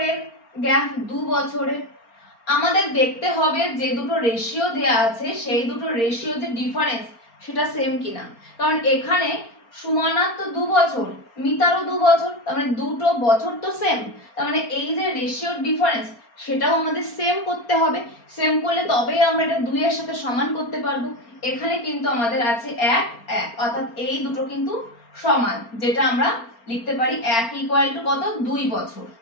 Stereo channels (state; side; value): late; right; 4.4 ms